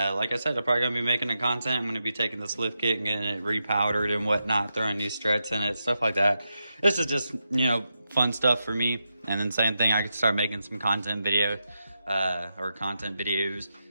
like I said, I'm probably gonna be making the content. I'm gonna be taking this lift kit and getting it repowdered and whatnot, throwing new struts in it, stuff like that. This is just, you know, fun stuff for me. And then same thing, I could start making some content video or content videos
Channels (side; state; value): both; inverted; correlation -0.87